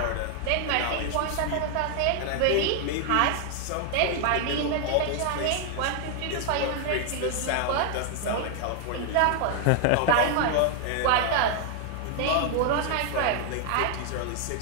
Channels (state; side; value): different; both; correlation 0.00